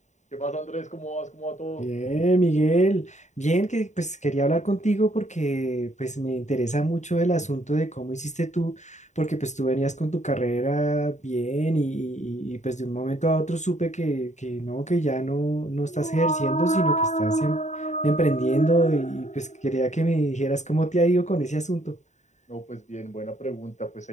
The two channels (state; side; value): late; right; 0.34 ms